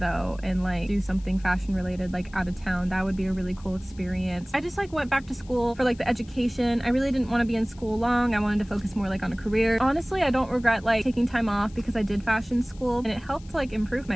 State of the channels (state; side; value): noise; left; hiss, 25 dB below the sound